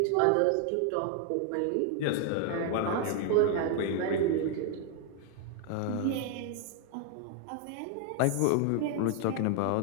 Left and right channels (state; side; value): different; both; correlation 0.00